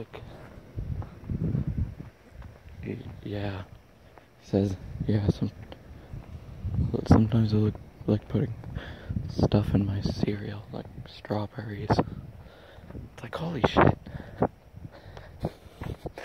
yeah. He says, yeah, sometimes I like putting stuff in my cereal, like strawberries. It's like, holy shit.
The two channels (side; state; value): both; identical; correlation 1.00